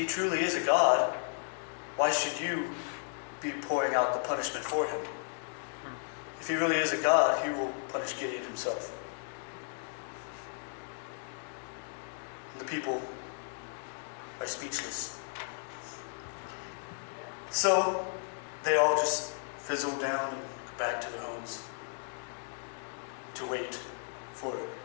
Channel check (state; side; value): silent; right; digital silence